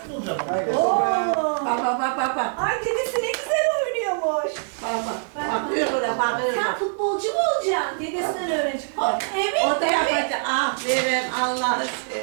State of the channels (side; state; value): left; silent; digital silence